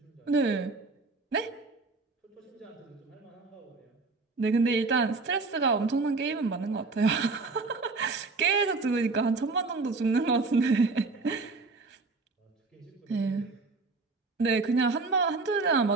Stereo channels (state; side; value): quieter; left; 3.8 dB